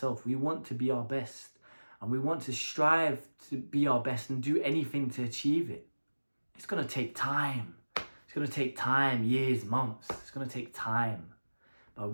we want to be our best, and we want to strive to be our best and do anything to achieve it. It's going to take time. It's going to take time, years, months. It's going to take time. But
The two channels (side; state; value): both; inverted; correlation -1.00